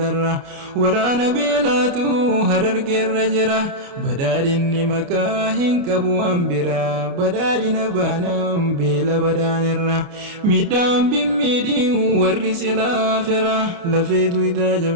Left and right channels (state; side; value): late; left; 29 ms